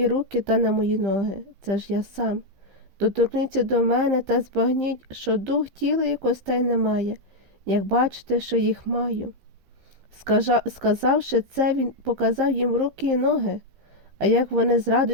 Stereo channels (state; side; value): late; left; 15 ms